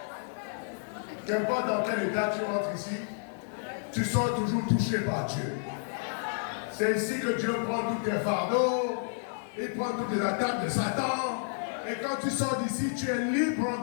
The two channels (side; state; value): right; silent; 57 dB below the other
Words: Qu'importe dans quel état tu rentres ici, tu sors toujours touché par Dieu. C'est ici que Dieu prend tous tes fardeaux, il prend toutes les attaques de Satan. Et quand tu sors d'ici, tu es libre en